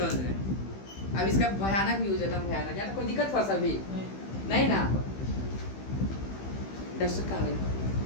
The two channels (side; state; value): right; late; 15 ms